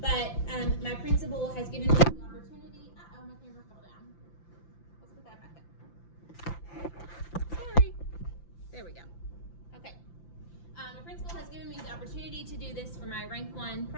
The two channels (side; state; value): right; late; 5.9 ms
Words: but my principal has given me the opportunity. Uh-oh, my camera fell down. Let's put that back up. Sorry. There we go. Okay. My principal has given me the opportunity to do this for my Rank 1